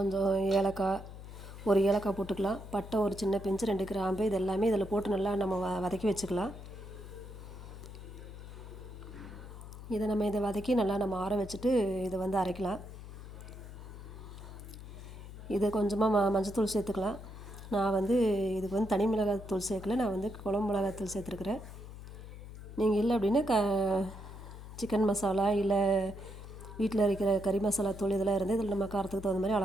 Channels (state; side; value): noise; left; hum, 13 dB below the sound